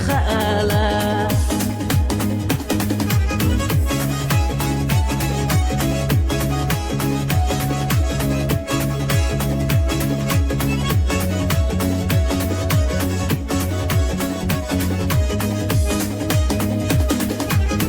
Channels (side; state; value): both; identical; correlation 1.00